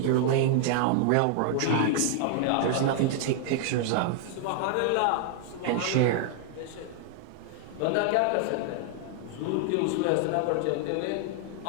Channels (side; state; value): both; different; correlation 0.00